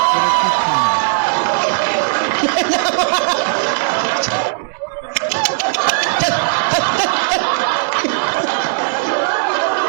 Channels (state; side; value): silent; left; 67 dB below the other